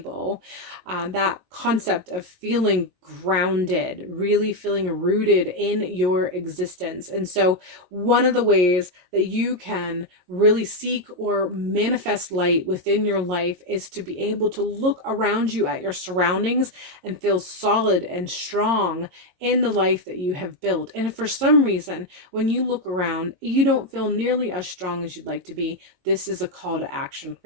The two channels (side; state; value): left; late; 22 ms